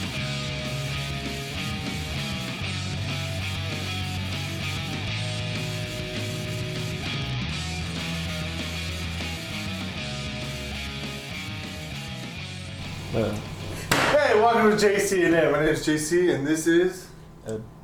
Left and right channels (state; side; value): identical; both; correlation 1.00